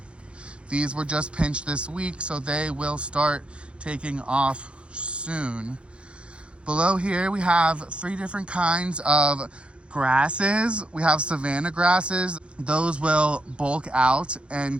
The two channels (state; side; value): late; left; 0.058 ms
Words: These were just pinched this week, so they will start taking off soon. Below here, we have 3 different kinds of grasses. We have savanna grasses. Those will bulk out